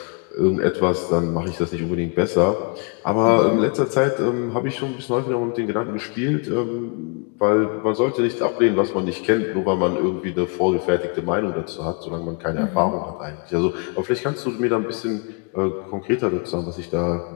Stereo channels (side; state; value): right; quieter; 35.1 dB